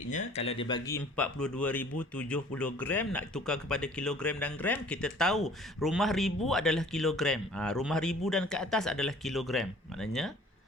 kalau dia bagi 42,070 gram nak tukar kepada kilogram dan gram, kita tahu rumah 1000 adalah kilogram. Rumah 1000 dan ke atas adalah kilogram. Maknanya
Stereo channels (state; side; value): normal; both; correlation 0.51